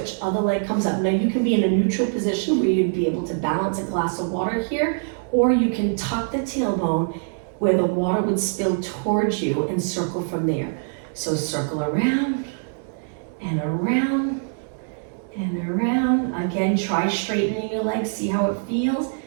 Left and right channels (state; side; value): silent; left; digital silence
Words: Other leg comes up. Now you can be in a neutral position where you'd be able to balance a glass of water here, or you can tuck the tailbone where the water would spill towards you and circle from there. So circle around and around and around. Again, try straightening your legs, see how it feels.